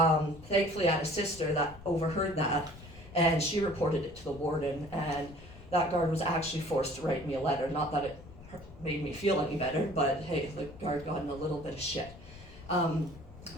I had a sister that overheard that, and she reported it to the warden, and that guard was actually forced to write me a letter. Not that it made me feel any better, but hey, the guard got in a little bit of shit.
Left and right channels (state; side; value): noise; left; rumble, 18 dB below the sound